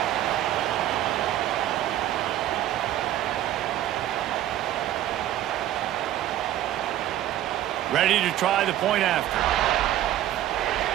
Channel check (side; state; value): left; quieter; 12.8 dB